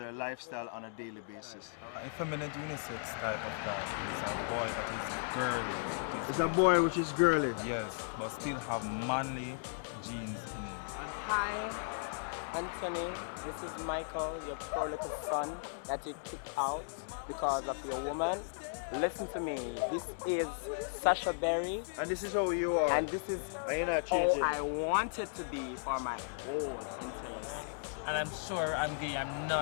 lifestyle on a daily basis. Effeminate unisex type of guy is a boy that is girly. It's a boy which is girly? Yes, but still have manly genes in him. Hi, Anthony. This is Michael, your poor little son that you kicked out because of your woman. Listen to me. This is Sasha Berry. And this is how you are. And this is how I want it to be for my whole entire life. And I'm sure I'm gay. I'm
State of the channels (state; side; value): silent; right; digital silence